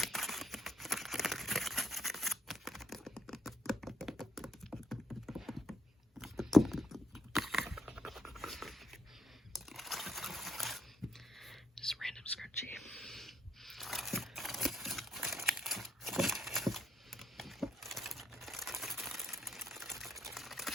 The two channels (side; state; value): both; normal; correlation 0.73